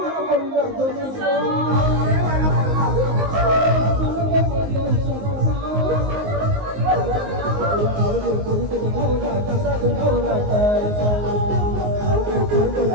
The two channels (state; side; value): late; left; 19 ms